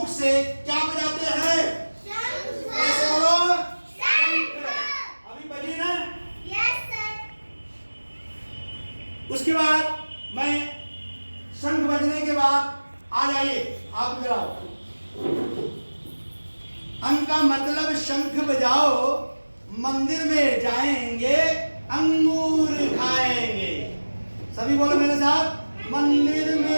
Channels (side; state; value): both; inverted; correlation -1.00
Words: से क्या बजाते हैं? कैसे बोलो? अभी बजी ना? Yes sir. उसके बाद मैं शंख बजने के बाद आ जाइए, आप इधर आओ। अंक का मतलब शंख बजाओ, मंदिर में जाएंगे, अंगूर खाएंगे। सभी बोलो मेरे साथ, मंदिर